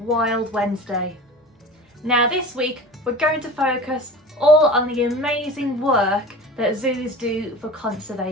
Wednesday. Now this week we're going to focus all on the amazing work that zoos do for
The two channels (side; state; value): both; normal; correlation 0.36